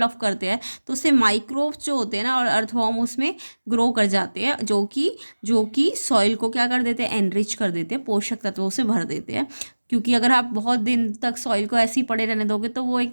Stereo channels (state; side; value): inverted; both; correlation -1.00